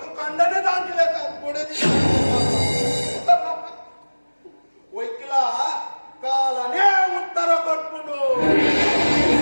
ಕಂಡನೆ ದಾಂತಿಲೆಕ್ಕ ಕೊಡದಿ ಒಯ್ಕಿಲ ಕಾಲನೇ ಉತ್ತರ ಕೊಟ್ಬಿಡು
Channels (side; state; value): both; inverted; correlation -1.00